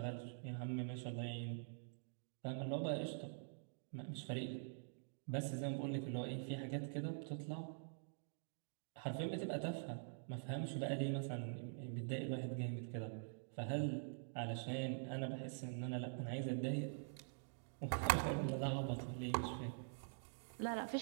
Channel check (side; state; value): left; silent; digital silence